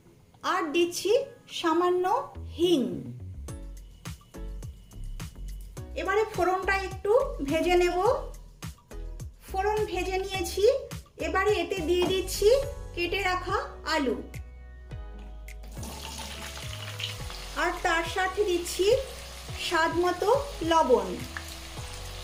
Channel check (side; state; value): both; identical; correlation 1.00